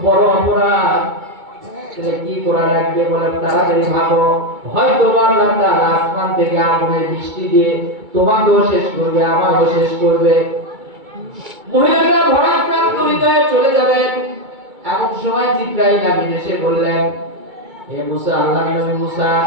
বড় অপরাধ। কি করা লাগবে? বলে তাড়াতাড়ি ভাগো, হয়তো আল্লাহ তাআলা আসমান থেকে আগুনের বৃষ্টি দিয়ে তোমাকেও শেষ করবে, আমারও শেষ করবে। মহিলাটা ভরাক্রান্ত হৃদয়ে চলে যাবেন। এমন সময় জিবরাইল আমিন এসে বললেন, হে মুসা, আল্লাহর নবী মুসা,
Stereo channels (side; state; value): left; late; 2.2 ms